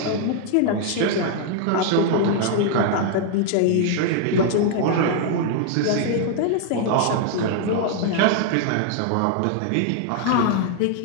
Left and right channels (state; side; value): different; both; correlation 0.00